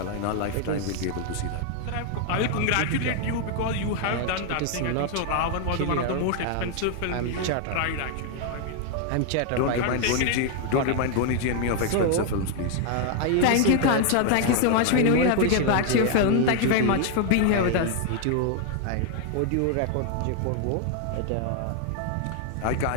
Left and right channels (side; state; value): both; different; correlation 0.00